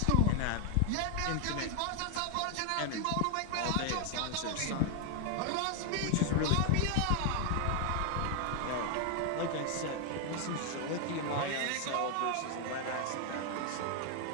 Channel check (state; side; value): different; both; correlation 0.00